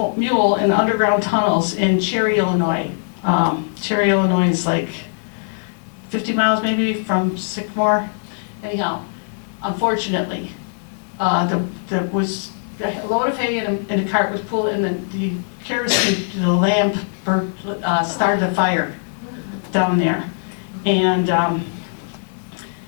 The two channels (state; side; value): silent; right; digital silence